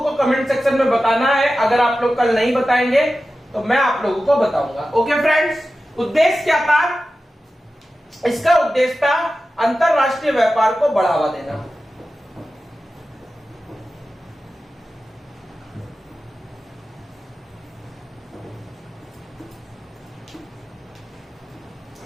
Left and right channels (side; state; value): both; normal; correlation 0.94